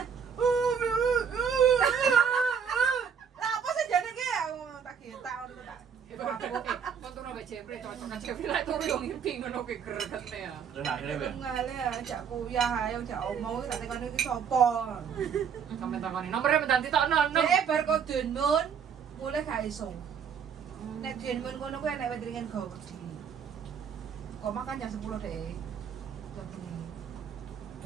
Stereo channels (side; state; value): left; quieter; 7.2 dB